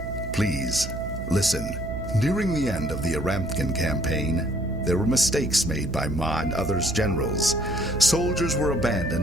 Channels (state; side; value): noise; right; hum, 8 dB below the sound